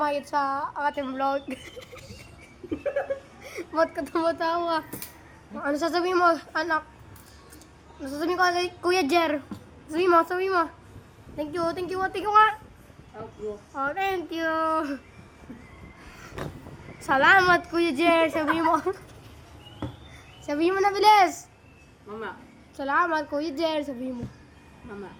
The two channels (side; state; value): both; identical; correlation 1.00